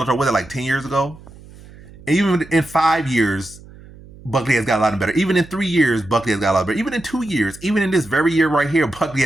was it like 10 years ago? And even in 5 years, Buckley has gotten a lot better. Even in 3 years, Buckley has got a lot better. Even in 2 years, even in this very year right here, Buckley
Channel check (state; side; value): noise; right; hum, 20 dB below the sound